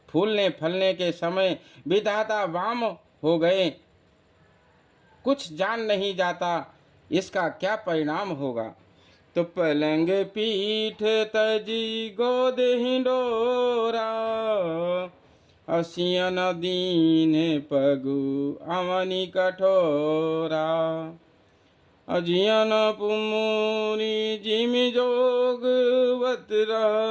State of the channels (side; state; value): both; identical; correlation 1.00